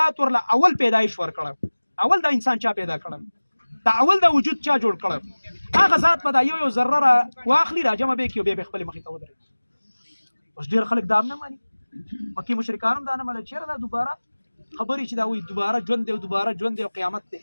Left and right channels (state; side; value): inverted; both; correlation -1.00